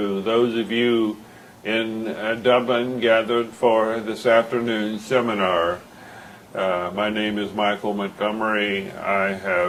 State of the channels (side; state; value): both; identical; correlation 1.00